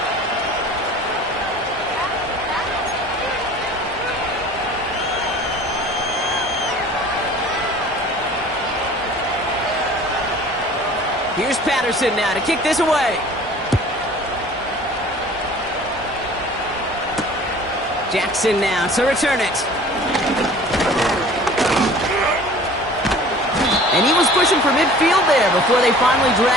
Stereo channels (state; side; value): normal; both; correlation 0.46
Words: Here's Patterson now to kick this away. Jackson now to return it. And he was pushing for midfield there before they finally